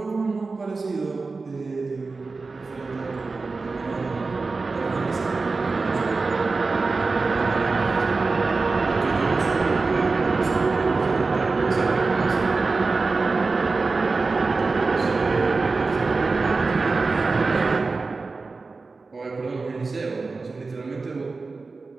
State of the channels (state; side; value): quieter; left; 4.0 dB